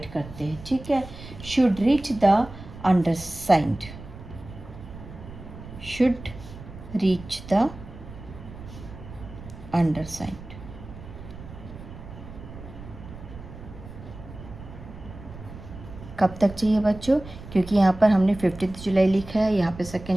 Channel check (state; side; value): noise; right; rumble, 15 dB below the sound